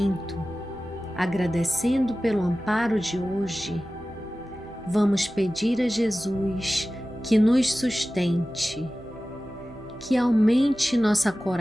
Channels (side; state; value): right; noise; hum, 23 dB below the sound